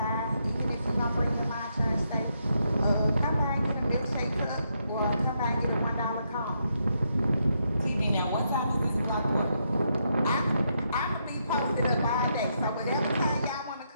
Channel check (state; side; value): inverted; both; correlation -0.79